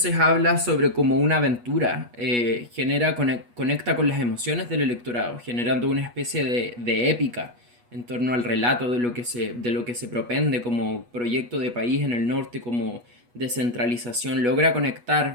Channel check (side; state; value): left; late; 8.3 ms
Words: habla sobre como una aventura, conecta con las emociones del electorado, generando una especie de épica en torno al relato de lo que se propende como proyecto de país en el norte, como descentralización. Logra